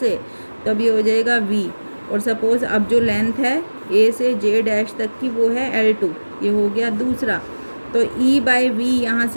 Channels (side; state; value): both; inverted; correlation -1.00